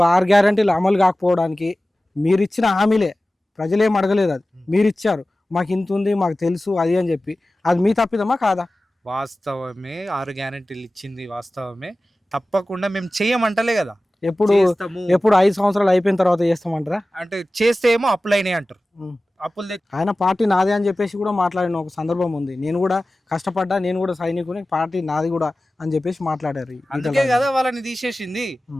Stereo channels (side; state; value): both; normal; correlation 0.96